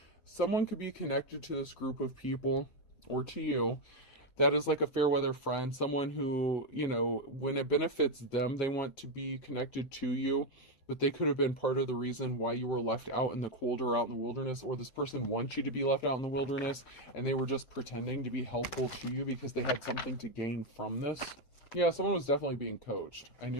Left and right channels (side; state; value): right; late; 7.8 ms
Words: someone could be connected to this group of people, or to you, that is like a fair weather friend, someone who, you know, when it benefits them, they want to be connected to you. But they could have been part of the reason why you were left out in the cold or out in the wilderness, or this person wants you to be left out in the wilderness, and they were just pretending to be helpful to you because they had something to gain from this. Yeah, someone was definitely being coached. I